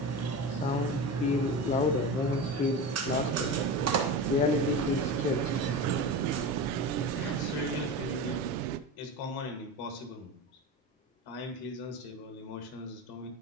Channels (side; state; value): both; normal; correlation 0.26